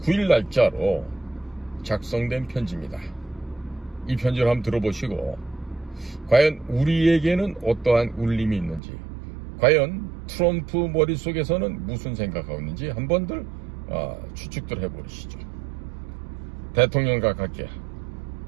날짜로 작성된 편지입니다. 이 편지를 한번 들어보시고 과연 우리에게는 어떠한 울림이 있는지, 과연 트럼프 머릿속에서는 무슨 생각하고 있는지 한번들 추측들 해보시죠. 대통령과 갈게요.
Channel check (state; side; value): drops out; left; at 8.8 s